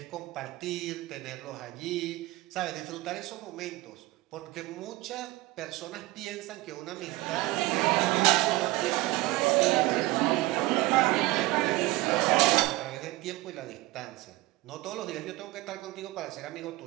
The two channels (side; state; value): left; quieter; 19.3 dB